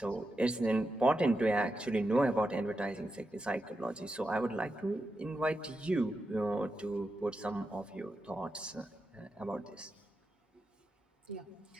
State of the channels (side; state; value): both; normal; correlation 0.88